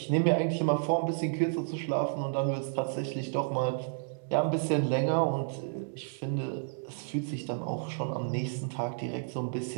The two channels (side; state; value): left; silent; digital silence